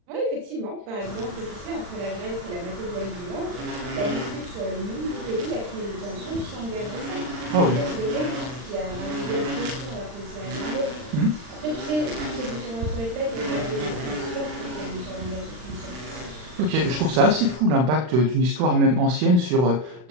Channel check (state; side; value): late; left; 40 ms